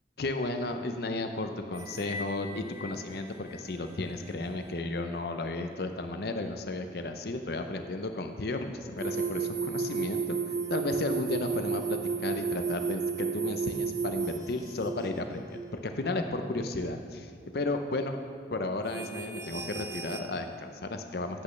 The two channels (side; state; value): both; normal; correlation 0.34